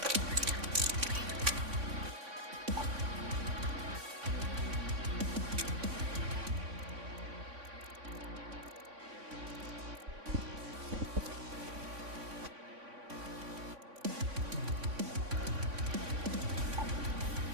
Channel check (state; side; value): late; left; 3.5 ms